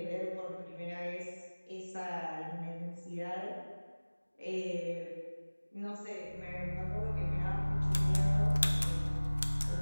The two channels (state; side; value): inverted; both; correlation -1.00